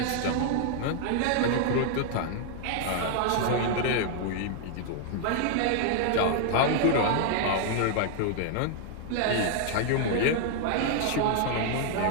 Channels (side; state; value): both; different; correlation 0.00